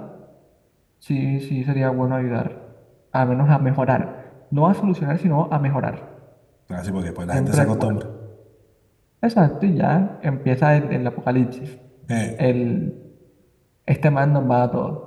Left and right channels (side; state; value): both; identical; correlation 1.00